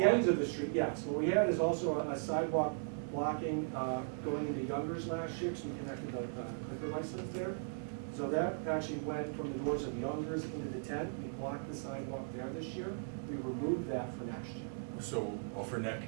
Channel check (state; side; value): silent; left; digital silence